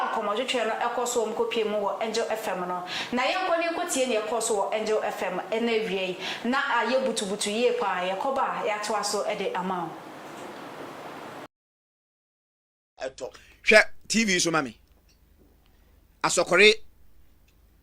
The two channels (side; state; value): both; identical; correlation 1.00